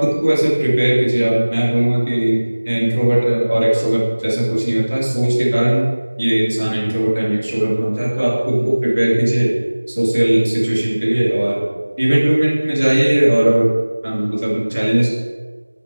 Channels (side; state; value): both; inverted; correlation -1.00